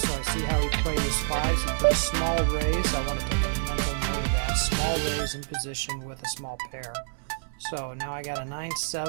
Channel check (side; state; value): left; silent; 60 dB below the other